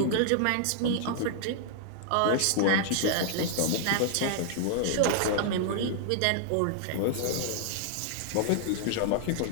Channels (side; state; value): both; different; correlation -0.01